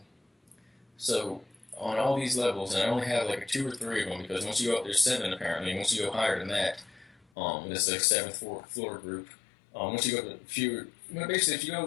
So on all these levels, and I only have like 2 or 3 of them because once you go up, there's 7 apparently. And once you go higher than that, this is like 7th floor group. Once you go to a few, basically if you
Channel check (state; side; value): drops out; right; at 7.2 s